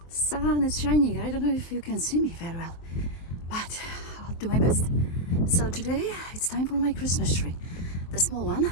Sun is shining. I don't know if you can see me very well, but I'll do my best. So today it's time for my Christmas tree, the small one.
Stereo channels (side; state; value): right; late; 23 ms